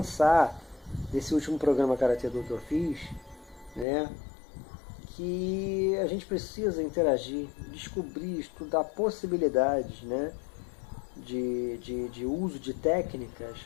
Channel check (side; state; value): right; drops out; at 3.9 s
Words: nesse último programa Karate-Do que eu fiz, né, que a gente precisa interagir, descobrir, estudar possibilidades, né, de uso de técnicas,